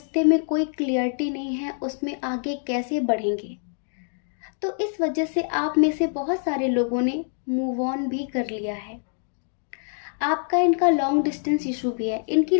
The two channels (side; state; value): right; silent; 62 dB below the other